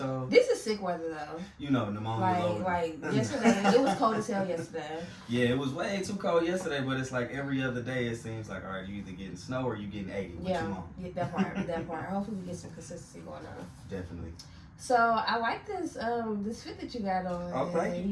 This is sick weather, though. Pneumonia loaded. Like yesterday, it was cold as hell yesterday. Yeah, it was way too cold yesterday, but it's like every other day it seems like, all right, you either getting snow or you getting 80. What you want? Yeah, that part. Hopefully we get some consistency going on. Definitely. So, I like this this fit that you got on. Oh,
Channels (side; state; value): both; identical; correlation 1.00